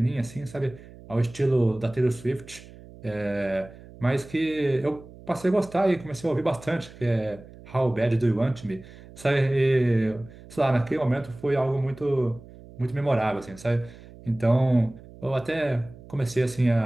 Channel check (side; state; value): right; noise; hum, 19 dB below the sound